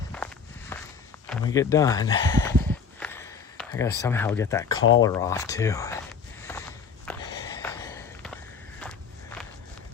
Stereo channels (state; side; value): quieter; right; 6.0 dB